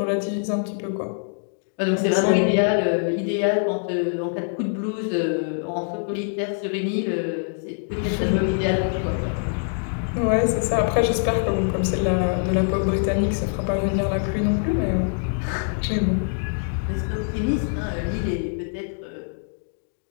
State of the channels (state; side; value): silent; right; digital silence